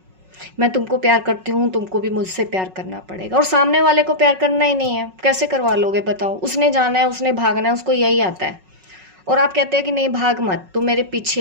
मैं तुमको प्यार करती हूँ, तुमको भी मुझसे प्यार करना पड़ेगा, और सामने वाले को प्यार करना ही नहीं है, कैसे करवा लोगे बताओ? उसने जाना है, उसने भागना है, उसको यही आता है, और आप कहते हैं कि नहीं भाग मत, तू मेरे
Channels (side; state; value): left; late; 5.4 ms